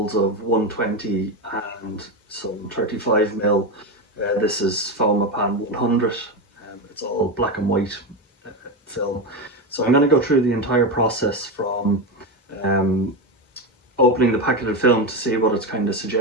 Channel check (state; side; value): normal; both; correlation 0.14